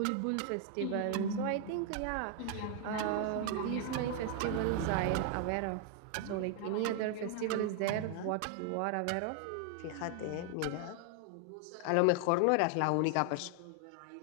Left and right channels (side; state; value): both; different; correlation 0.00